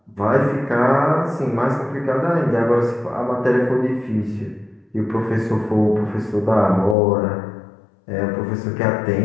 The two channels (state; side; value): drops out; right; at 7.0 s